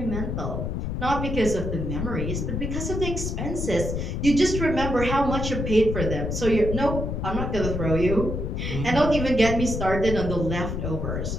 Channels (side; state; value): left; noise; rumble, 3 dB below the sound